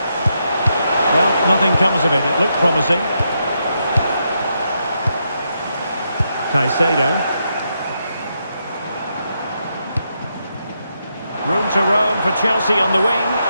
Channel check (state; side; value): inverted; both; correlation -0.81